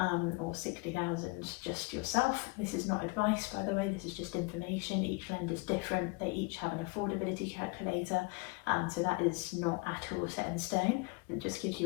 or 60,000 just yourself. This is not advice, by the way, this is just information. Each lender's different, they each have an affordability calculator, so that is not at all set in stone. It just gives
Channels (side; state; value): right; quieter; 27.4 dB